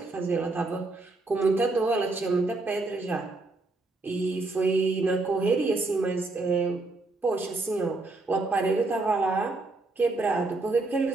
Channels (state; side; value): quieter; left; 3.3 dB